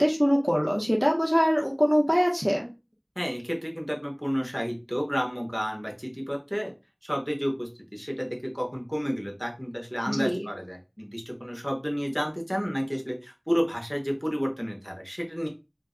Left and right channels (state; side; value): identical; both; correlation 1.00